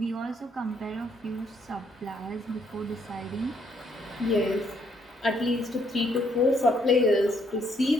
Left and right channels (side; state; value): both; normal; correlation 0.70